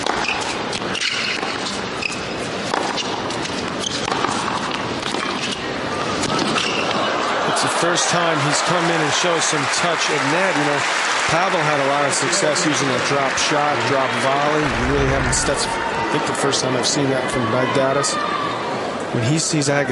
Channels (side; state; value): both; identical; correlation 1.00